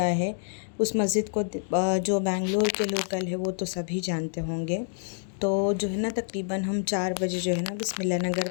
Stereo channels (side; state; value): right; silent; digital silence